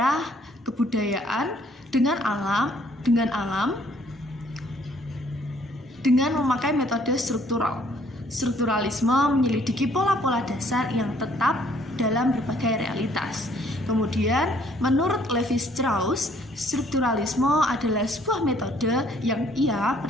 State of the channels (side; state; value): both; normal; correlation 0.63